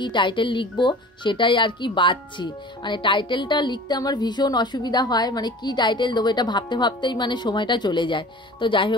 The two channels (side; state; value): both; normal; correlation 0.41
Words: টাইটেল লিখবো সেটাই আর কি বাঁচছি। মানে টাইটেলটা লিখতে আমার ভীষণ অসুবিধা হয়, মানে কি টাইটেল দেবো এটা ভাবতে ভাবতেই মানে সময়টা চলে যায়। তো যাই